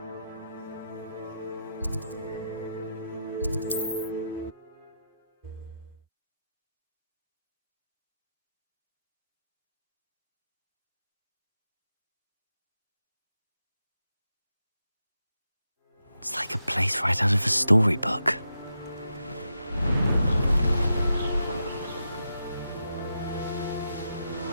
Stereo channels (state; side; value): inverted; both; correlation -0.85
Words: It's like a place right out of a storybook.